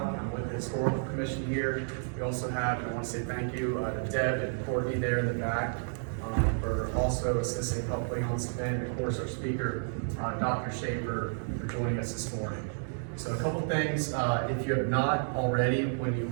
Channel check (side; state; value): left; silent; digital silence